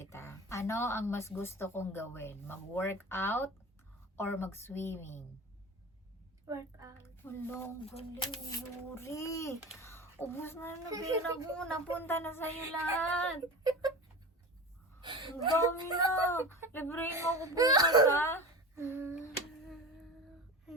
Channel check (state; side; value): normal; both; correlation 0.30